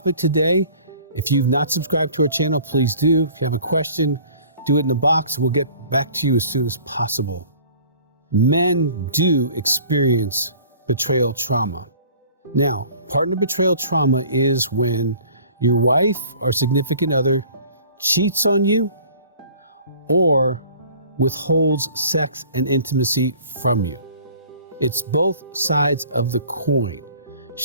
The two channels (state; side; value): inverted; both; correlation -0.50